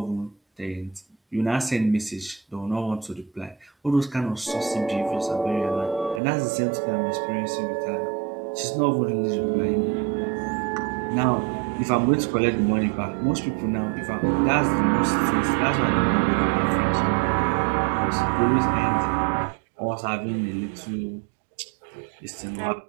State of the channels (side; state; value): left; drops out; at 6.2 s